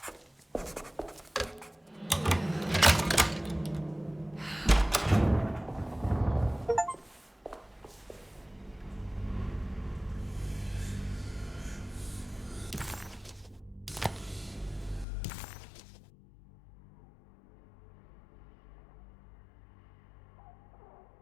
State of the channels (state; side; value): drops out; right; at 15.1 s